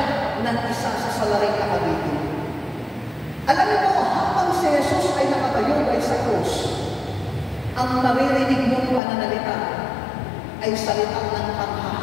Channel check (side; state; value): right; drops out; at 9.0 s